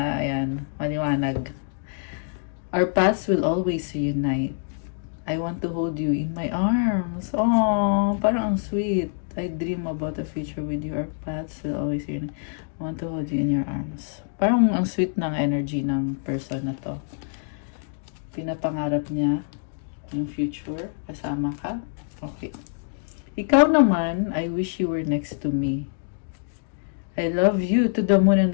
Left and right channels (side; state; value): right; silent; digital silence